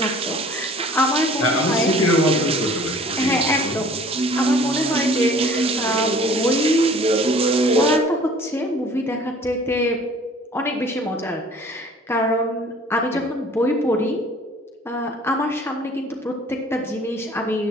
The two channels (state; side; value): normal; both; correlation 0.51